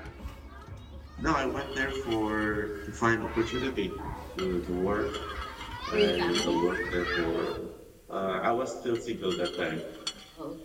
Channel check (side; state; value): both; identical; correlation 1.00